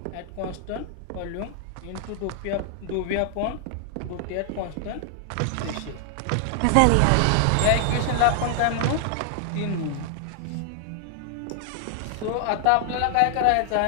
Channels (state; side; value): different; both; correlation 0.00